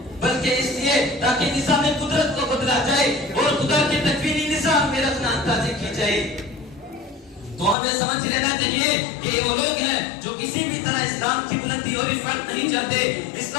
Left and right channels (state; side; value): drops out; right; at 7.8 s